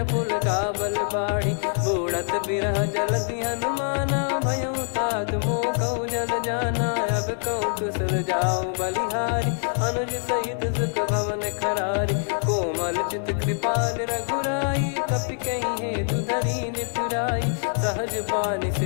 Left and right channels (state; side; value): silent; right; 58 dB below the other